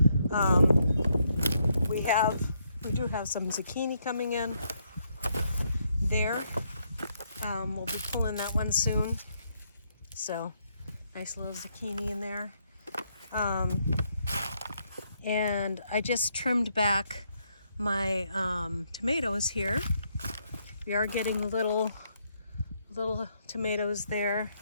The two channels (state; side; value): inverted; both; correlation -0.75